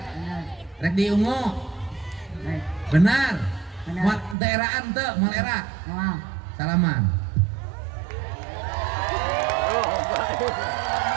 Benar. rek diungu, Baik. benar, Benar. mal daeraan teu, mal era, Mau. salaman.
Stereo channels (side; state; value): left; drops out; at 4.4 s